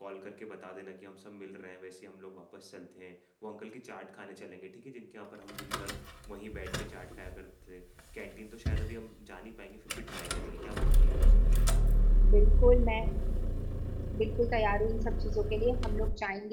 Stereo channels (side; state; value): both; identical; correlation 1.00